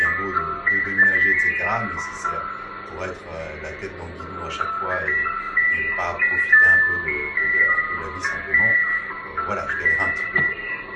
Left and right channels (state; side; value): identical; both; correlation 1.00